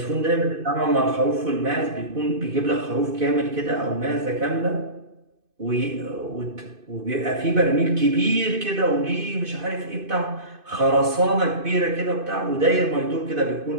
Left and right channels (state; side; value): late; left; 2.5 ms